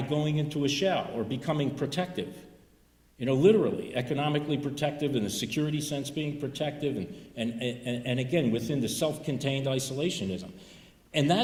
going into a shell or becoming protective. Literally, economically protective, in the security sense being protective, and again, within the self-contained isolationism. And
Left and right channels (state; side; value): identical; both; correlation 1.00